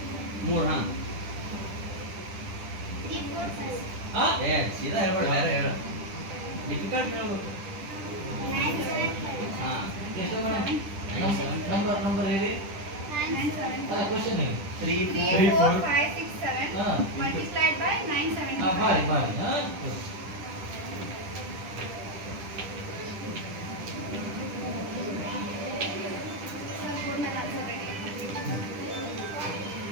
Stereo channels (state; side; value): late; left; 10 ms